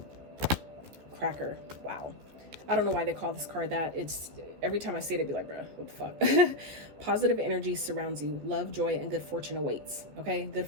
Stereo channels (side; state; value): left; late; 15 ms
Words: Cracker. Wow. I don't know why they call this card that. It's, every time I see it, I'd be like, bruh, what the fuck? Positive energy surrounds you. Love, joy, and good fortune awaits. Okay? Good